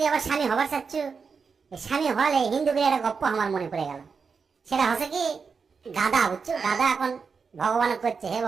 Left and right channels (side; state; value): left; quieter; 5.4 dB